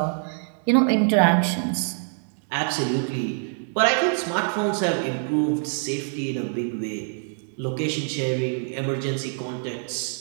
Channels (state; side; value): silent; left; digital silence